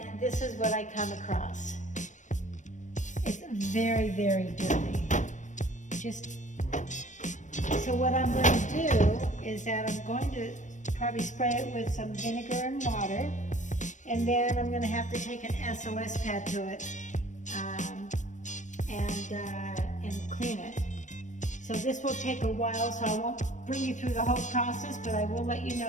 this is what I come across. It's very, very dirty. So what I'm going to do is that I'm going to probably spray it with some vinegar and water, and then I'm going to have to take an SOS pad to it and clean it. So this will take a while, so I won't bring you through the whole process, but I will let you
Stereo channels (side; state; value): right; late; 0.35 ms